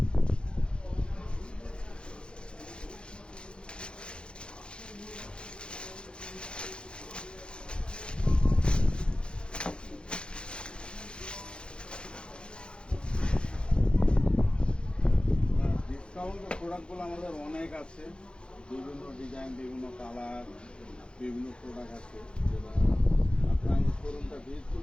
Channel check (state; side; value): late; right; 0.054 ms